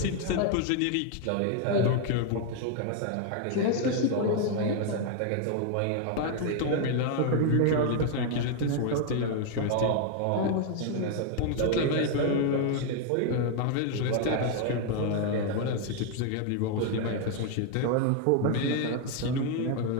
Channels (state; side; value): different; both; correlation 0.00